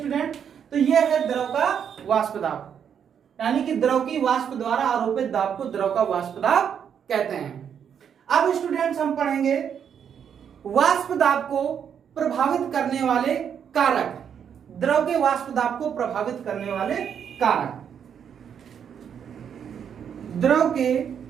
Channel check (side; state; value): left; quieter; 8.0 dB